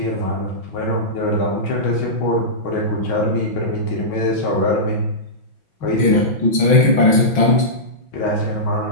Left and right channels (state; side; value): late; right; 6.1 ms